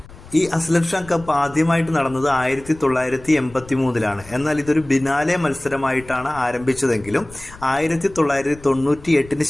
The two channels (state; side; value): noise; left; rumble, 20 dB below the sound